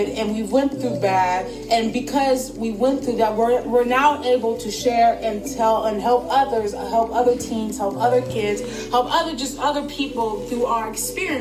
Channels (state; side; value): identical; both; correlation 1.00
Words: and we went through bad, and because we went through that, we're now able to share and tell and help others, help other teens, help other kids, help other people through our